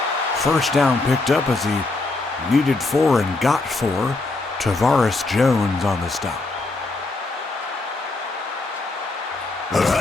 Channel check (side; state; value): right; quieter; 3.3 dB